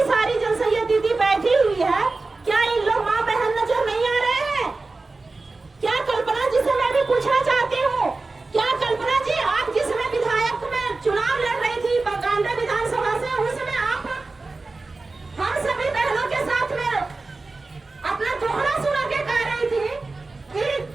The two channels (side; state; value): left; quieter; 3.5 dB